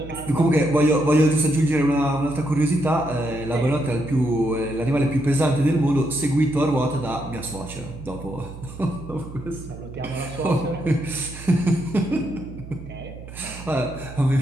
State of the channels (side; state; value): right; noise; hum, 14 dB below the sound